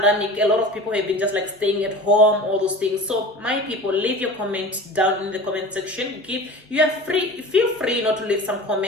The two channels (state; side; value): normal; both; correlation 0.37